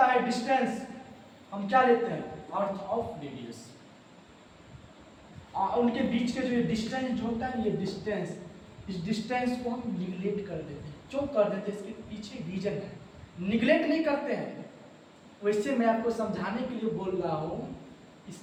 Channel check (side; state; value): both; identical; correlation 1.00